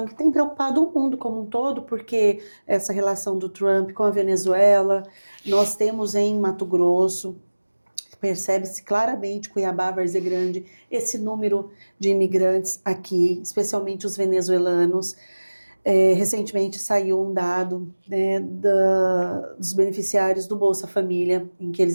que tem preocupado o mundo como um todo, porque essa relação do Trump com a Venezuela, nós temos em Mato Grosso, percebe-se claramente, Cuiabá, Várzea Grande, esse número de imigrantes aqui, especialmente os venezuelanos. Recentemente saiu um dado, né, dos beneficiários do Bolsa Família, em que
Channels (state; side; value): inverted; both; correlation -1.00